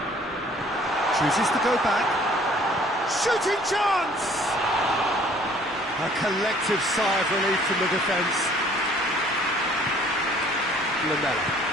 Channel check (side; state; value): both; normal; correlation 0.56